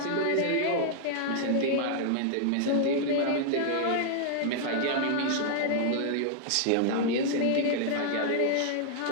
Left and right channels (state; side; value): different; both; correlation -0.01